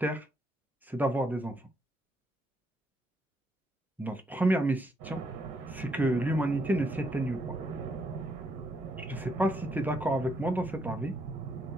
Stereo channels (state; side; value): normal; both; correlation 0.76